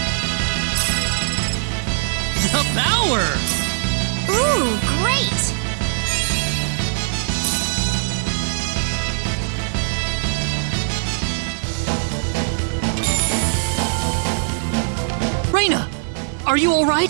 The power! Ooh, great! Reina! Are you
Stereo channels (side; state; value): left; silent; digital silence